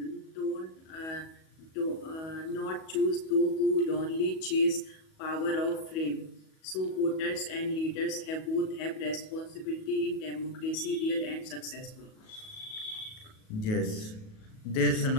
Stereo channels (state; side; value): late; right; 37 ms